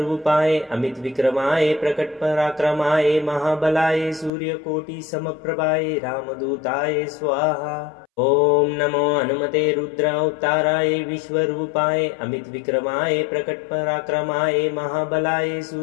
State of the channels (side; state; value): right; drops out; at 4.3 s